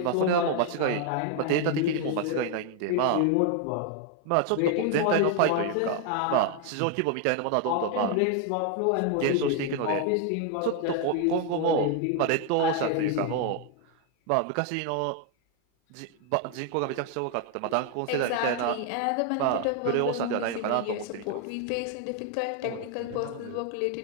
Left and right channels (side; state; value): both; different; correlation 0.01